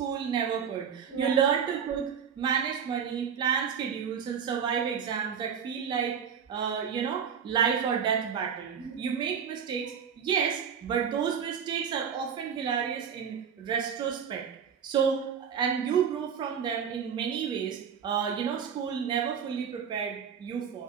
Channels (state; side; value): quieter; left; 7.4 dB